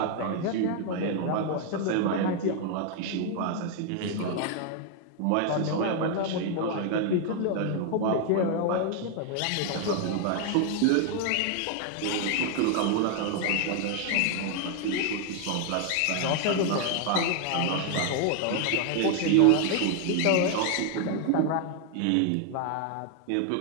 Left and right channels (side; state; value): both; different; correlation 0.00